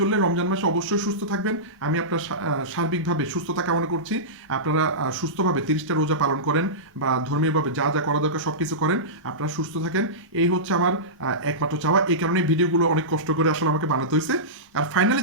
রমজান মাসে অবশ্যই সুস্থ থাকবেন। আমি আপনার সার্বিকভাবে সুস্থতা কামনা করছি। আপনারা সুস্থভাবে 30টা রোজা পালন করেন বা ধর্মীয়ভাবে যা যা করা দরকার সব কিছু করেন, আপনারা সুস্থ থাকেন। এই হচ্ছে আমার একমাত্র চাওয়া। এই কারণে ভিডিওগুলো অনেক কষ্ট করে আসলে আমাকে বানাতে হয়েছে। আর ফাইনালি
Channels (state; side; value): normal; both; correlation -0.17